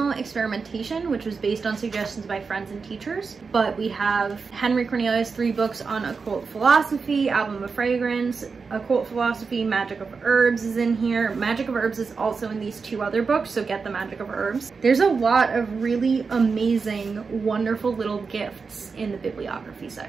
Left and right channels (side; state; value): left; quieter; 4.9 dB